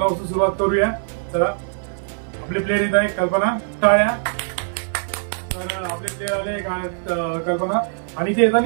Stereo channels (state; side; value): silent; left; 58 dB below the other